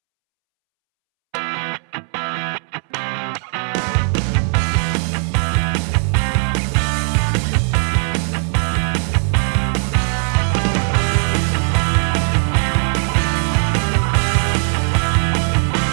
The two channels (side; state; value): left; silent; 67 dB below the other